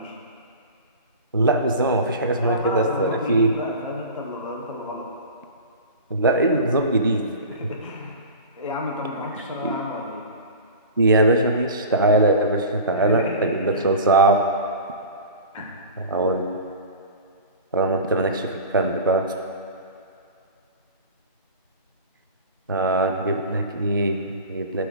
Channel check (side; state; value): both; inverted; correlation -0.35